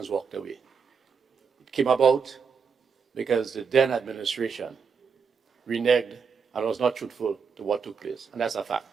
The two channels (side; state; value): left; quieter; 6.0 dB